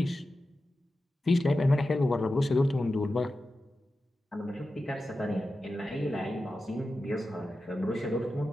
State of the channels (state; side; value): normal; both; correlation 0.92